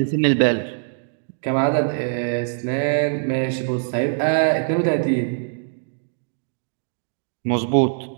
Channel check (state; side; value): silent; left; digital silence